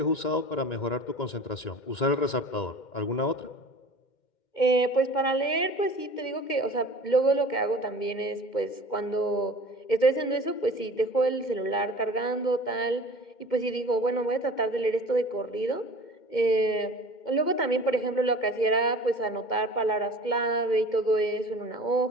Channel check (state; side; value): late; right; 2.1 ms